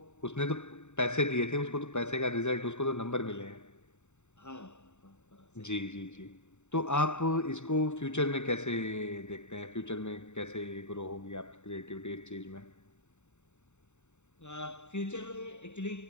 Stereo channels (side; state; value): right; late; 0.83 ms